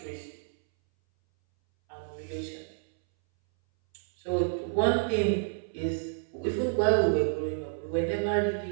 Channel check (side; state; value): left; silent; 58 dB below the other